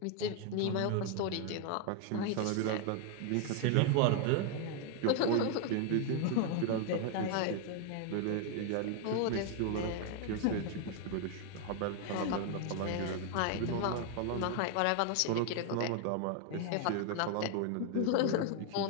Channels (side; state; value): both; different; correlation 0.00